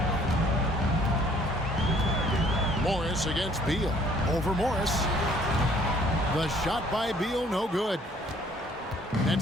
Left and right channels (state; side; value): normal; both; correlation 0.59